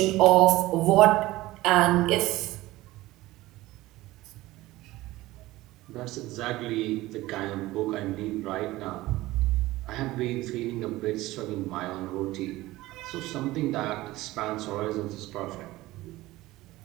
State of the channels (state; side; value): quieter; left; 17.9 dB